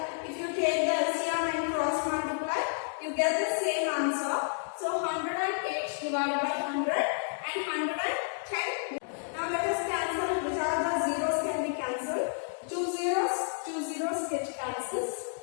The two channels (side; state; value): right; silent; digital silence